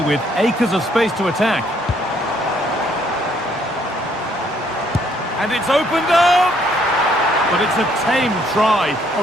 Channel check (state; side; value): normal; both; correlation 0.67